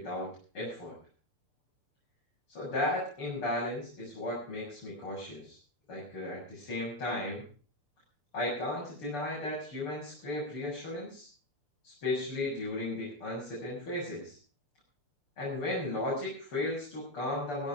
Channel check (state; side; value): late; right; 6.8 ms